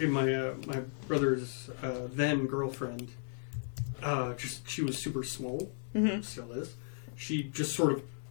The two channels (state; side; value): silent; right; digital silence